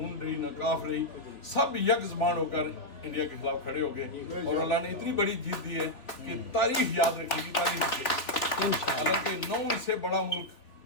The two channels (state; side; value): late; right; 3.4 ms